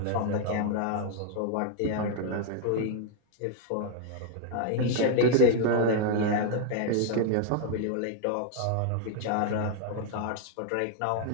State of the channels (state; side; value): different; both; correlation 0.00